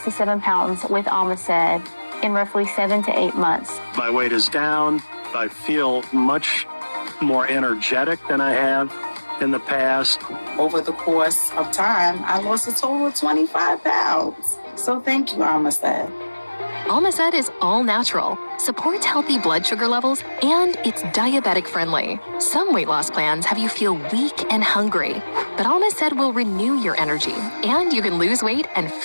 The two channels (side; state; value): both; inverted; correlation -1.00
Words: pounds with Almacet in roughly 7 to 8 months. My weight is down. I feel much more energetic than I have in the past. Over the course of time, I lost a total of 25 pounds. So thank you, Almacet. Almacet is all natural, supports healthy blood sugar levels, and it's diabetic friendly. Some weight loss plans have you feel weak and hungry, but Almacet will renew your energy, and you can lose weight and